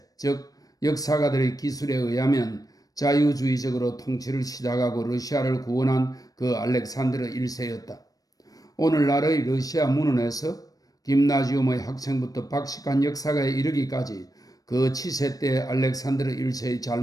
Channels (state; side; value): late; right; 0.18 ms